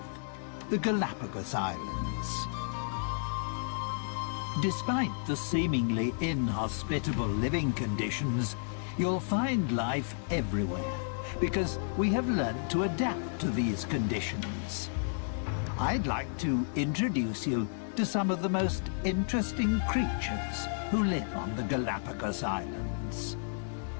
The Galapagos Islands. Despite the seemingly inhospitable living conditions, you'll find life everywhere, because we have learned to adapt to these conditions. I'd like to introduce you to some of the most interesting creatures who live on the Galapagos Islands.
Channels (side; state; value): right; silent; digital silence